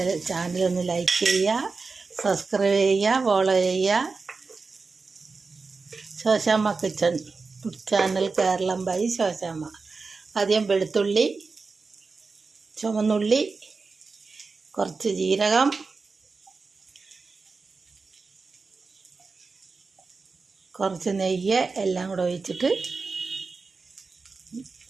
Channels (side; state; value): left; quieter; 4.3 dB